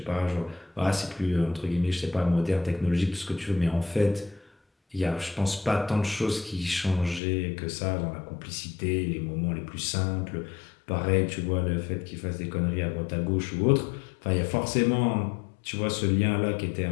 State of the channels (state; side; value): drops out; right; at 7.2 s